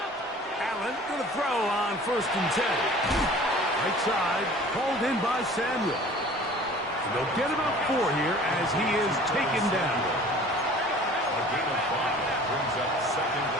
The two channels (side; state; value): both; normal; correlation 0.46